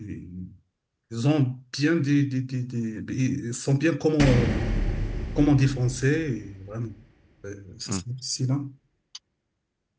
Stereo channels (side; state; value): both; identical; correlation 1.00